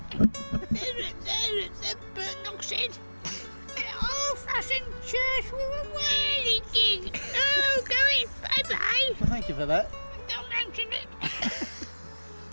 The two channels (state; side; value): inverted; both; correlation -1.00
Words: there's a burnt oxide. An old-fashioned church with a whirly gig. Oh, going bye-bye. Well, thank you for that. Don't mention it.